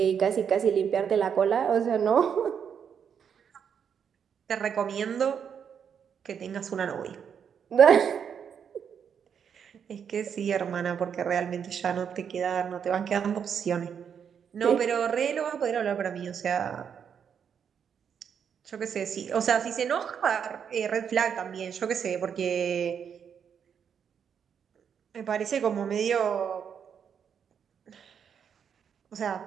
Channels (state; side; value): quieter; left; 7.6 dB